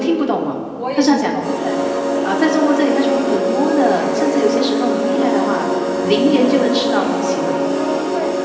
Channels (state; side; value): identical; both; correlation 1.00